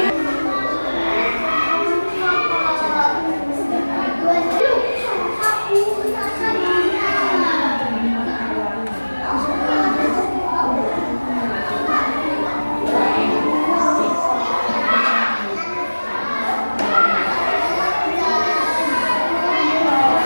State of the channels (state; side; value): inverted; both; correlation -1.00